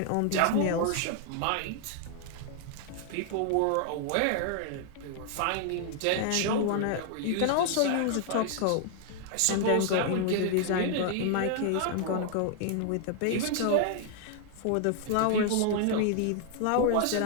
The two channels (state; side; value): different; both; correlation 0.00